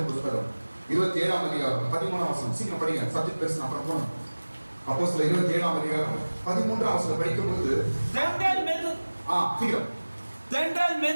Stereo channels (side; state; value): both; inverted; correlation -1.00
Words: புத்தகம் 27 அதிகாரம் 13 வசனம். சீக்கிரம் படிங்க, சப்ஜெக்ட் பேசணும் அப்புறம் போகணும். அப்போஸ்தலர் 27 அதிகாரம் 13 வசனம் படிக்கும் பொழுது தென்றல்